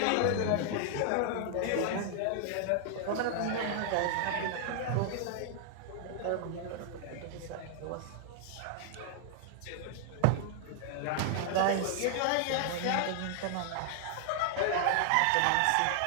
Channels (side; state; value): both; different; correlation 0.00